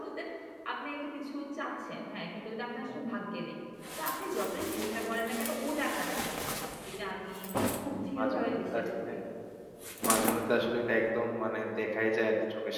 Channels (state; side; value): identical; both; correlation 1.00